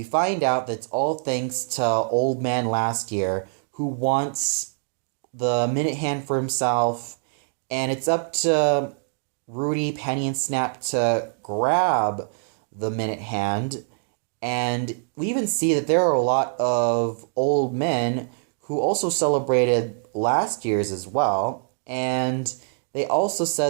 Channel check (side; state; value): left; silent; digital silence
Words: find out that it's all thanks to Old Man Last Year, who wants the Minute Hand for himself, and it's up to Rudy, Penny, and Snap to grab the Minute Hand. And we even see that there are a lot of old men who also celebrated last year's as well. And they also